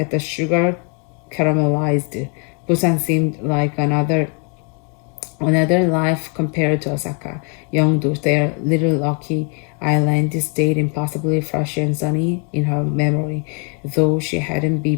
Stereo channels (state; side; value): quieter; right; 37.1 dB